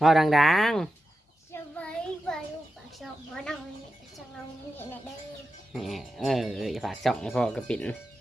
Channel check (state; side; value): normal; both; correlation 0.91